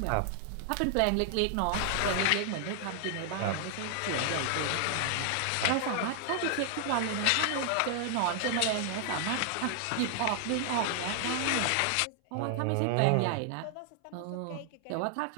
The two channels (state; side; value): different; both; correlation 0.00